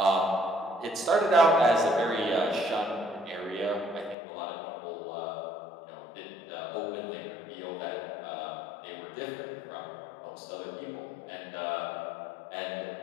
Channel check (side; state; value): right; drops out; at 4.2 s